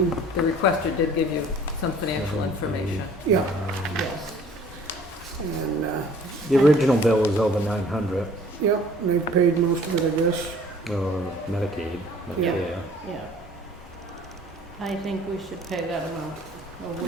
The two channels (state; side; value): normal; both; correlation 0.52